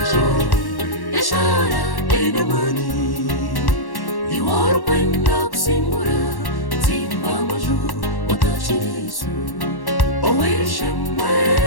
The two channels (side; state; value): right; late; 1.1 ms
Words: ishara inamani iwaro kwenda kusimbura zimba maju watachirisu oweshemwe